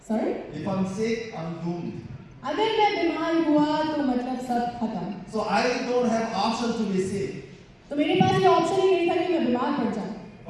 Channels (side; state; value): both; identical; correlation 1.00